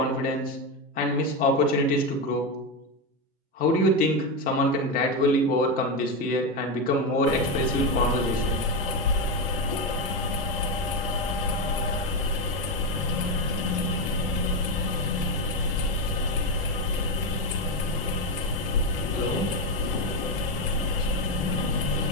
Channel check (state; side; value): normal; both; correlation 0.10